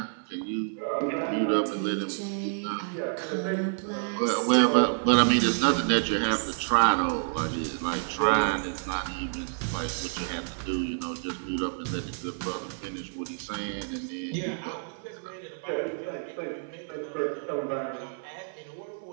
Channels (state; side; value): silent; left; 59 dB below the other